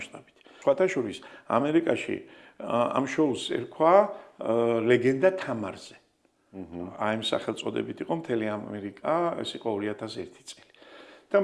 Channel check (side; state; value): both; identical; correlation 1.00